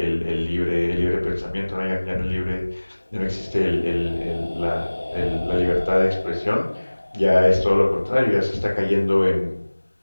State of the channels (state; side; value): inverted; both; correlation -1.00